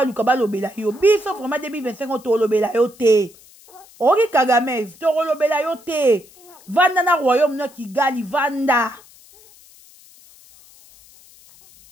balobela yo. Biso vraiment 2025 to lobela yo te. Ori Kagamez, to lobela yo te. Vanda na royaume na Kigali vanda.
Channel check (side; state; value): left; noise; hiss, 25 dB below the sound